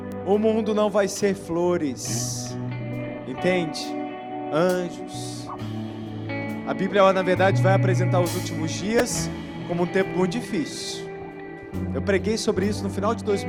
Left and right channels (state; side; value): identical; both; correlation 1.00